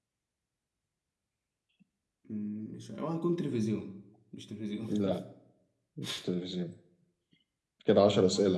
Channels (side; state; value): both; identical; correlation 1.00